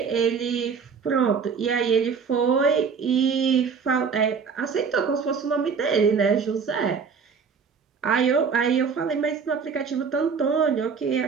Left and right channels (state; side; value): quieter; left; 5.9 dB